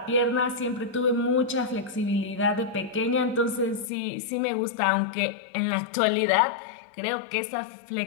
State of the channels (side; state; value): right; drops out; at 3.9 s